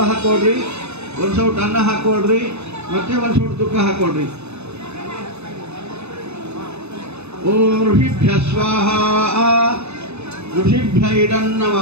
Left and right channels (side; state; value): left; late; 0.81 ms